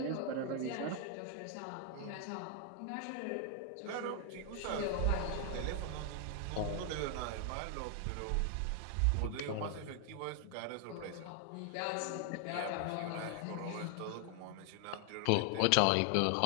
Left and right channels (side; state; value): both; different; correlation 0.00